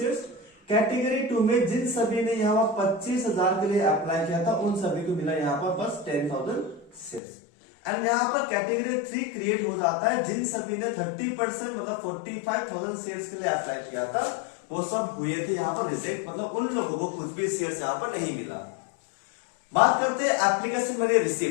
कैटेगरी 2 में जिन सभी ने यहाँ पर 25,000 के लिए अप्लाई किया था उन सभी को मिला यहाँ पर बस 10,000 शेयर्स। एंड यहाँ पर कैटेगरी 3 क्रिएट हो जाता है, जिन सभी ने 30% मतलब 45,000 शेयर्स के लिए अप्लाई किया था वो सब हुए थे यहाँ पर रिजेक्ट, मतलब उन लोगों को कुछ भी शेयर्स यहाँ पर नहीं मिला। बात करते हैं एप्लीकेशन मनी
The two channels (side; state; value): right; drops out; at 7.2 s